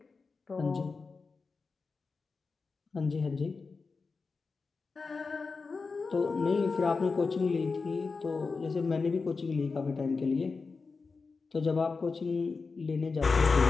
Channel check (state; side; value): quieter; right; 4.4 dB